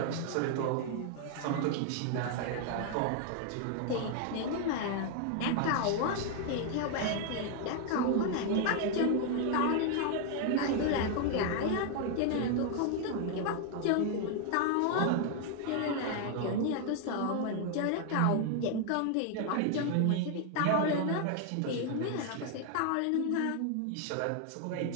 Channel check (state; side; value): different; both; correlation 0.00